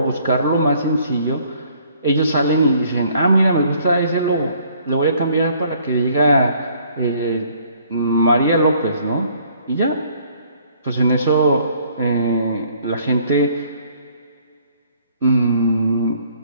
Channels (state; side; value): inverted; both; correlation -0.61